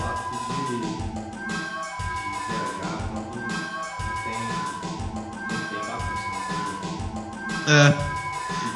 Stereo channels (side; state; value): both; identical; correlation 1.00